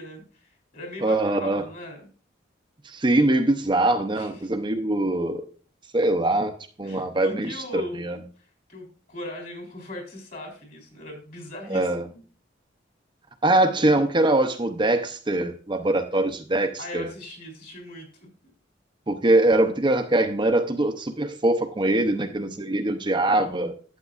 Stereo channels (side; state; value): both; normal; correlation 0.54